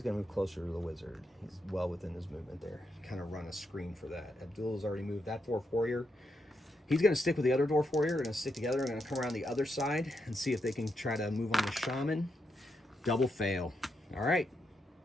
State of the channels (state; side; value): normal; both; correlation 0.82